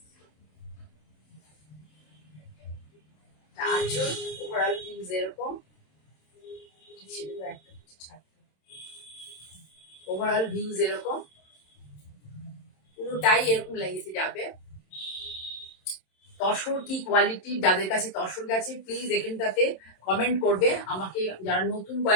আঁচল ওভারঅল ভিউজ এরকম ছিল, একটা ওভারঅল ভিউজ এরকম পুরোটাই এরকম লাগিয়ে যাবে। তসর কি কোয়ালিটি, যাদের কাছে তসর গেছে প্লিজ এখানটাতে কমেন্ট করবে আমাকে। যারা নতুন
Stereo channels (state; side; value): late; right; 27 ms